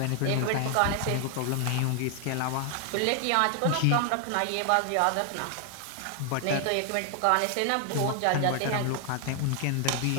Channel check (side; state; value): both; different; correlation 0.00